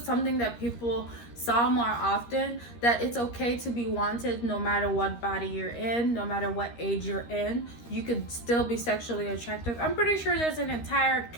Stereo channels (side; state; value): right; late; 13 ms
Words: something that people saw more often, that it's okay to be wanted no matter what body you're in, no matter what age you're in, you could still be sexually attractive. I'm pretty sure there's an entire